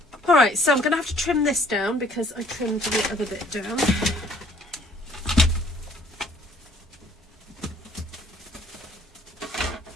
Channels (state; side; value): normal; both; correlation 0.58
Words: Alright, so I'm going to have to trim this down because I trimmed the other bit down.